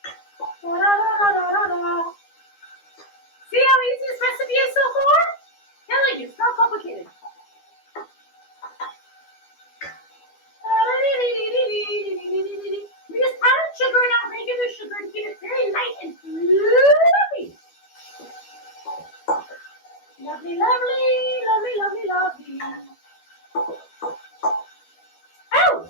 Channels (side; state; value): right; late; 12 ms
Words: Da, da, da, da, da, da. See how easy this recipe is so far? Telling you, it's not complicated. We just added sugar, not regular sugar, to keep it very light and fluffy. Lovely, lovely, lovely, lovely, lovely. Oh,